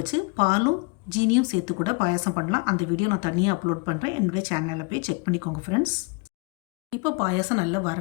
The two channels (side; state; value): right; quieter; 30.5 dB